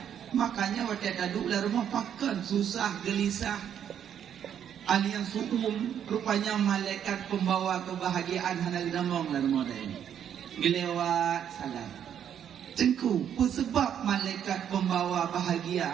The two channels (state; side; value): quieter; left; 9.2 dB